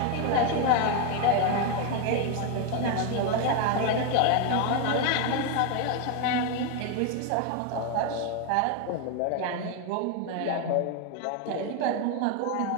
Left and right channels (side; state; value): both; different; correlation 0.01